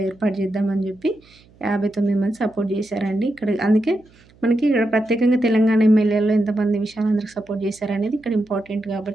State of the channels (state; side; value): noise; right; hum, 29 dB below the sound